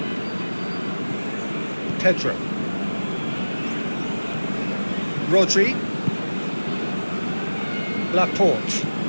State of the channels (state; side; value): inverted; both; correlation -1.00